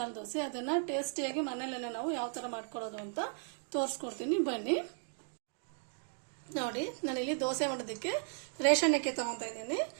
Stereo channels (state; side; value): silent; left; 54 dB below the other